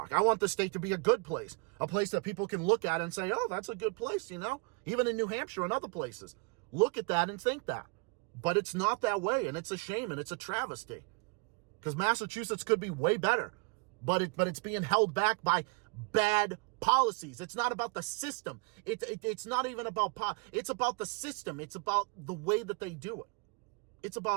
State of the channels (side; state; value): left; quieter; 31.4 dB